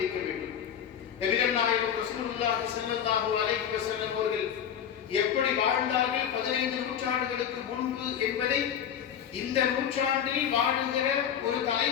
வேண்டும். நபிகள் நாயகம் ரசூலுல்லாஹி ஸல்லல்லாஹு அலைஹி வஸல்லம் அவர்கள் எப்படி வாழ்ந்தார்கள் 15 நூற்றாண்டுகளுக்கு முன்பு என்பதை இந்த நூற்றாண்டில் வாழுகிற ஒரு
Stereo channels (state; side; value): quieter; right; 8.8 dB